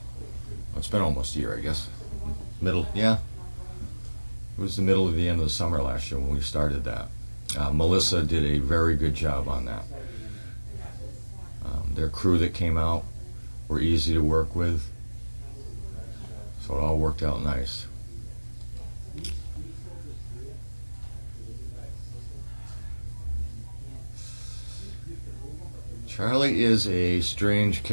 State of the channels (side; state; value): both; inverted; correlation -1.00